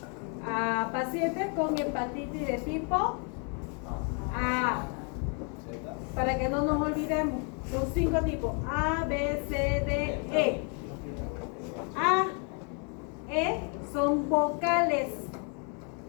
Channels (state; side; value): quieter; right; 38.8 dB